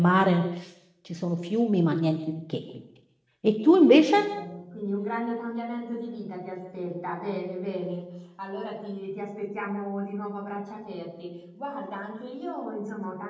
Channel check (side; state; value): both; identical; correlation 1.00